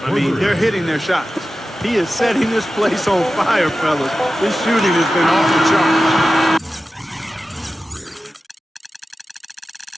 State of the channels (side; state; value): both; normal; correlation 0.93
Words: I mean, they're hitting their shots. He is setting this place on fire, fellas. His shooting has been off the charts.